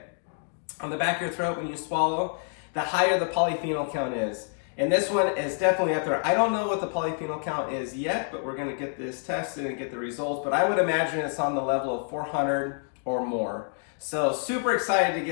on the back of your throat when you swallow, the higher the polyphenol count is. And this one is definitely up there. I don't know what the polyphenol count is yet, but we're gonna get this tested and get the results. But I would imagine it's on the level of 400 or more. So super excited to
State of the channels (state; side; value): silent; right; 60 dB below the other